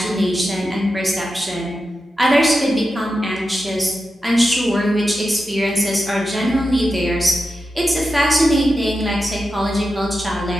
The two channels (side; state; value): both; normal; correlation 0.90